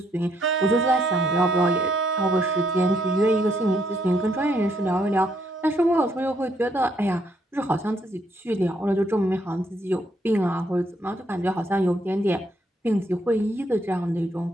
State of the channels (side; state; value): both; normal; correlation 0.72